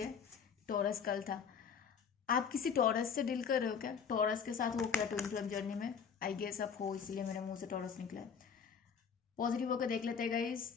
टॉरस कल था, आप किसी टॉरस से डील कर रहे हो क्या? टॉरस के साथ हो क्या ट्विन फ्लेम जर्नी में? आई गेस आप हो, इसलिए मेरे मुंह से टॉरस निकला है। पॉजिटिव होकर देख लेते हैं गाइस,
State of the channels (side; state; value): right; quieter; 6.7 dB